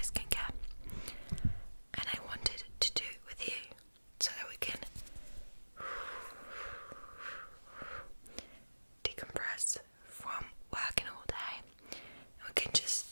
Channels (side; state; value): both; inverted; correlation -1.00